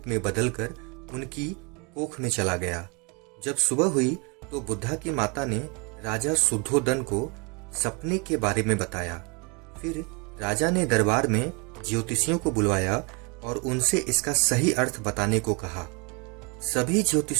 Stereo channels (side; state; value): left; quieter; 31.1 dB